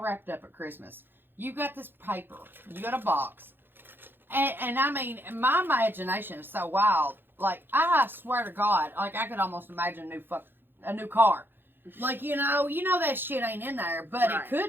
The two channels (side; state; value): left; late; 0.10 ms